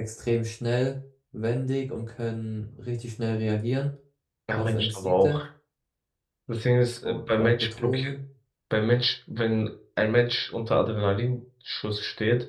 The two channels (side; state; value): both; identical; correlation 1.00